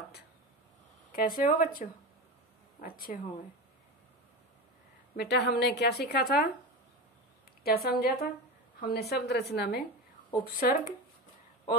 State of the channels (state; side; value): normal; both; correlation 0.23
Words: कैसे हो बच्चों? अच्छे होंगे। बेटा, हमने क्या सीखा था, क्या समझा था? हमने शब्द रचना में उपसर्ग